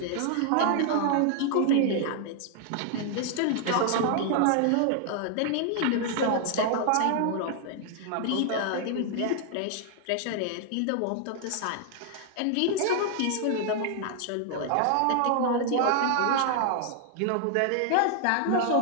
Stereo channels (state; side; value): different; both; correlation 0.00